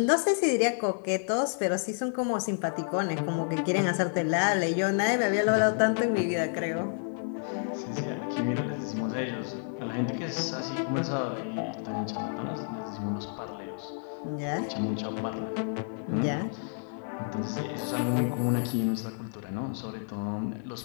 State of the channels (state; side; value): silent; right; 58 dB below the other